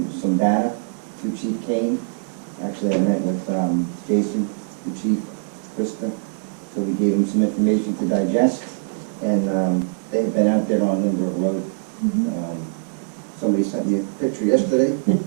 some data to Chief Kane. Actually, I met with Jason, the chief, Krista, so we gave him some information to digest, and they have been out there on Lindbergh Road. Somebody sent me a picture yesterday.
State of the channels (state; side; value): silent; left; 64 dB below the other